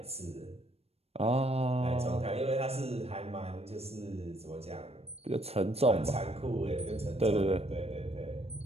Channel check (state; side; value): late; left; 0.29 ms